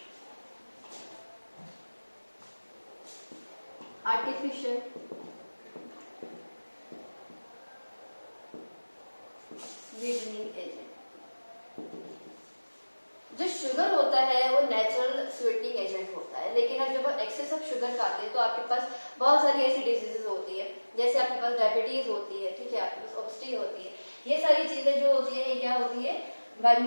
आर्टिफिशियल स्वीटनिंग एजेंट, जो शुगर होता है वो नेचुरल स्वीटनिंग एजेंट होता है, लेकिन अब जब आप एक्सेस ऑफ शुगर खाते हैं तो आपके पास बहुत सारी ऐसी डिजीजेस होती है, जैसे आपके पास डायबिटीज होती है, ठीक है, आपके पास ओबेसिटी होती है। ये सारी चीजें जो होती है ये क्या होती है? By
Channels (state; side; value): inverted; both; correlation -1.00